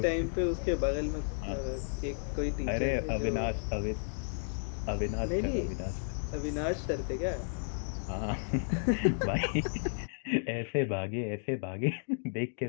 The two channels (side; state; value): right; silent; digital silence